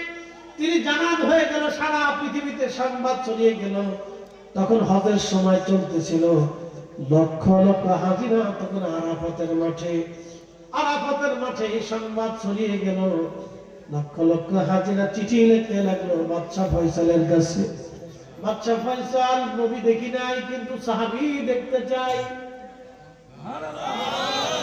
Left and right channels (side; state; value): both; identical; correlation 1.00